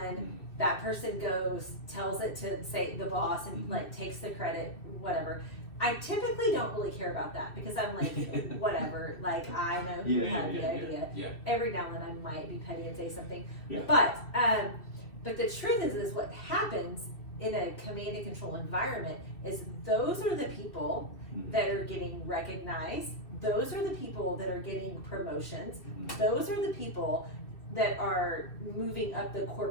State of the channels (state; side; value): late; right; 2.7 ms